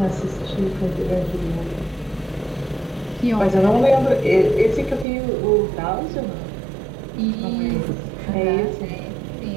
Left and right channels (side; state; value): left; drops out; at 5.1 s